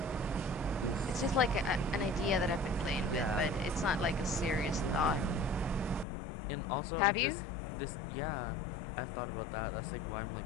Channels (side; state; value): right; drops out; at 6.1 s